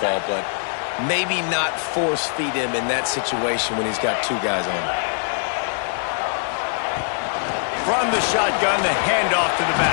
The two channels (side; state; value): right; silent; 57 dB below the other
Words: but maybe not force feed him in that situation when he's got 2 guys on him. From the shotgun, the handoff to the